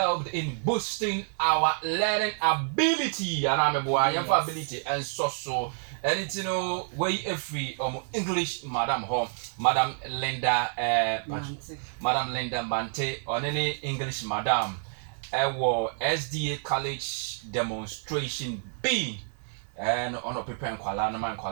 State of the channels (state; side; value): silent; left; 59 dB below the other